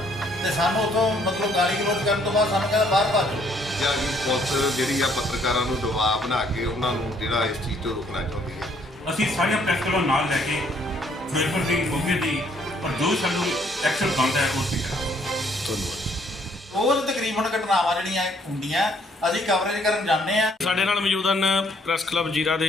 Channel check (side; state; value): both; normal; correlation 0.65